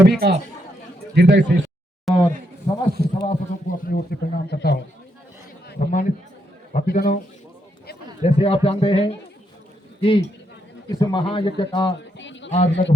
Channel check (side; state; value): both; normal; correlation 0.79